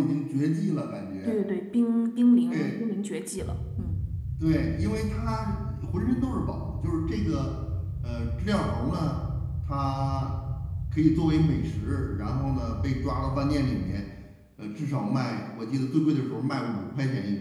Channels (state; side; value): identical; both; correlation 1.00